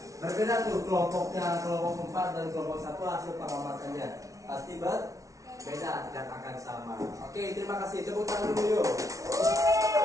Berbeda tuh kelompoknya, kelompok 4 dan kelompok 1 hasil pengamatannya. Pasti beda, tidak akan sama. Oke, terima kasih. Tepuk tangan dulu yuk.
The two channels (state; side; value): late; left; 0.16 ms